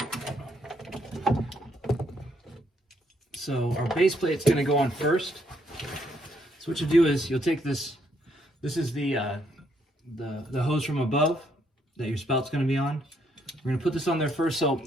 So our base plate's going to go on first. So what you do is you'll take this. This is the hose from above that your spout's going to be on. We're going to put this on there first. So it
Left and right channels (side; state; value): both; normal; correlation 0.72